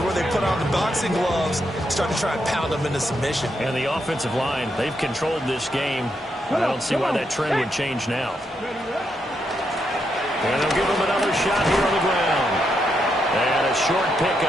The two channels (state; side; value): normal; both; correlation 0.80